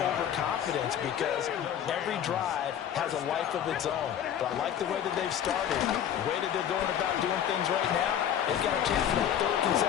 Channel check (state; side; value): quieter; right; 9.7 dB